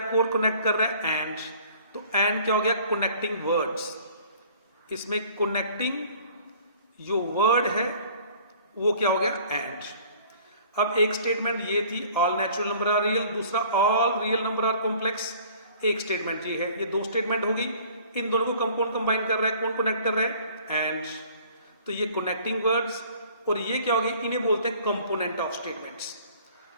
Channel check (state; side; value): inverted; both; correlation -0.52